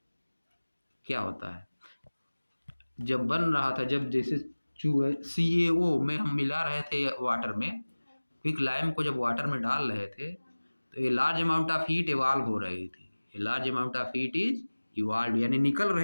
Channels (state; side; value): inverted; both; correlation -1.00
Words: क्या होता है, जब बन रहा था, जब जैसे CaO में हम मिला रहे थे वाटर में, क्विक लाइम को जब वाटर में डाल रहे थे, तो ये large amount of heat evolve हो रही थी। ये large amount of heat is evolve, यानी निकल